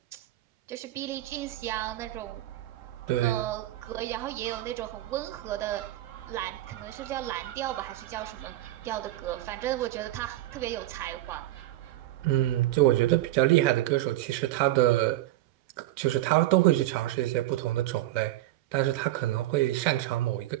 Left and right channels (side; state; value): left; quieter; 15.6 dB